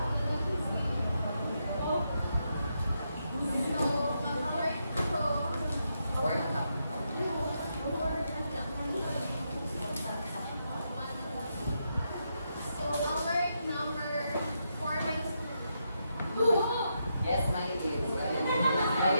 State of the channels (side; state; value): both; inverted; correlation -0.82